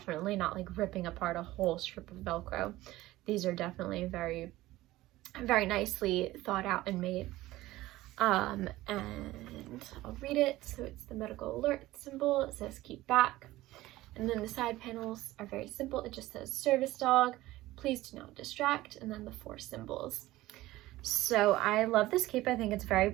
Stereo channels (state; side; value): quieter; left; 17.1 dB